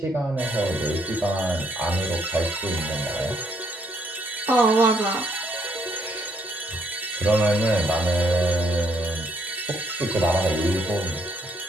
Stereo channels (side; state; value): both; normal; correlation 0.71